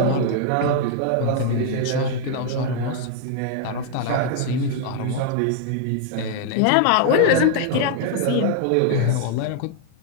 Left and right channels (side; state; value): both; different; correlation 0.00